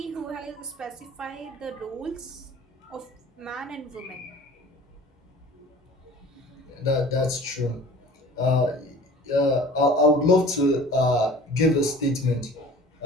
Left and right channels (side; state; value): both; normal; correlation 0.44